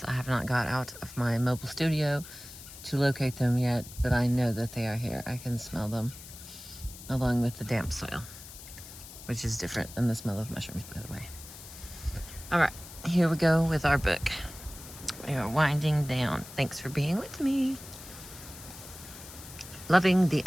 I have not got out of my mobile studio to locate them yet, but I know that they are here. I can smell them along with the damp soil, which is different than the smell of mushrooms, by the way. All right, here we go with our book. We are winding down. Thanks for being with me. Loving the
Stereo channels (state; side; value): noise; left; hiss, 15 dB below the sound